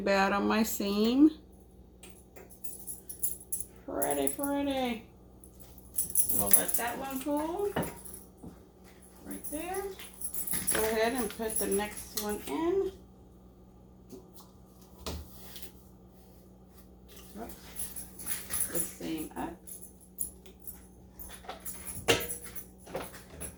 on my seam. Pretty. We'll let that one cool. Right there. Go ahead and put the next one in. The seam up.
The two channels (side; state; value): both; identical; correlation 1.00